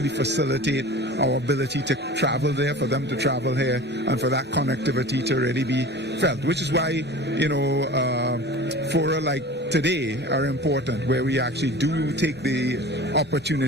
facilitate our ability to travel there, for them to travel here, and for that connectivity to really be felt, which is why, fora like today are important, where we actually do take the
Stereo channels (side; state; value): both; normal; correlation 0.38